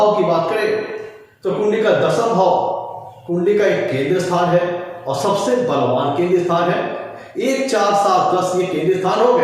की बात करें तो कुंडली का दसम भाव कुंडली का एक केंद्र स्थान है और सबसे बलवान केंद्र स्थान है। 1, 4, 7, 10 ये केंद्र स्थान हो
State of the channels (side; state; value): both; identical; correlation 1.00